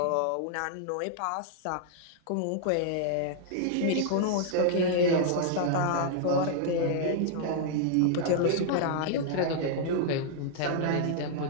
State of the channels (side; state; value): both; different; correlation -0.01